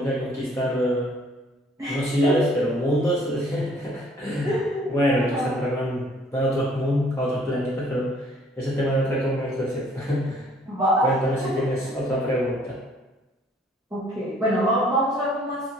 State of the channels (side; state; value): both; normal; correlation 0.59